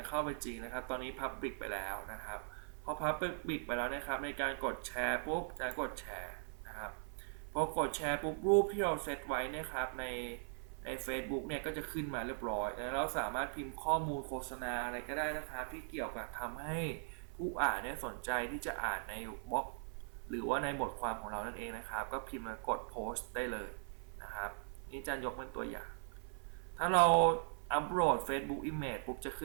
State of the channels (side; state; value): left; silent; 51 dB below the other